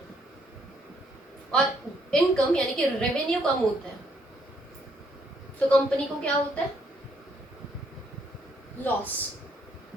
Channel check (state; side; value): normal; both; correlation 0.70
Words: और इनकम यानी कि रेवेन्यू कम होता है, तो कंपनी को क्या होता है, लॉस।